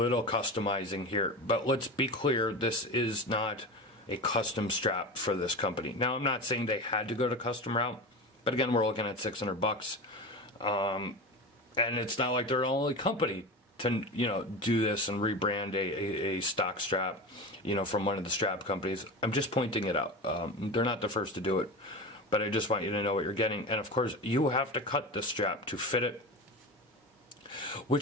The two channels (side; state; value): both; normal; correlation 0.26